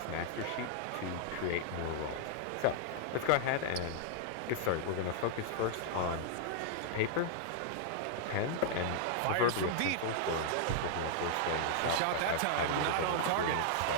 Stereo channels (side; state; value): both; different; correlation -0.01